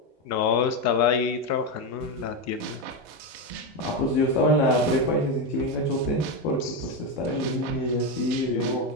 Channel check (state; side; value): normal; both; correlation 0.11